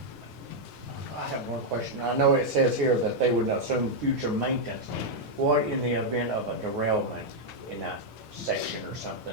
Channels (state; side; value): normal; both; correlation -0.03